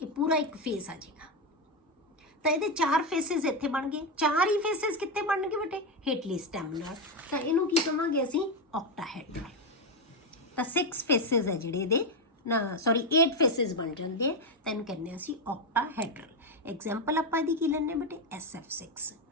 ਪੂਰਾ ਇੱਕ ਫੇਸ ਆ ਜਾਏਗਾ। ਤਾਂ ਇਹਦੇ ਚਾਰ ਫੇਸਿਸ ਇੱਥੇ ਬਣ ਗਏ। ਚਾਰ ਹੀ ਫੇਸਿਸ ਕਿੱਥੇ ਬਣਨਗੇ ਬੇਟੇ? ਹੇਠਲੀ ਸਟੈਮ ਨਾਲ। ਤਾਂ ਇਹਨੂੰ ਕੀ ਕਹਾਂਗੇ ਅਸੀਂ? ਆਕਟਾਹੈਡਰਲ। ਤਾਂ 6 ਫੇਸਿਸ ਹੈ ਜਿਹੜੇ ਇਹਦੇ ਨਾ, ਸੌਰੀ 8 ਫੇਸਿਸ ਬਣ ਜਾਂਦੇ ਆ, ਤਾਂ ਇਹਨੂੰ ਕਹਿੰਦੇ ਅਸੀਂ ਆਕਟਾਹੈਡਰਲ। ਐਗਜ਼ਾਮਪਲ ਆਪਾਂ ਇਹਦੀ ਕੀ ਲੈਣੇ ਬੇਟੇ? SF6।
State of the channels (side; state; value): both; normal; correlation 0.09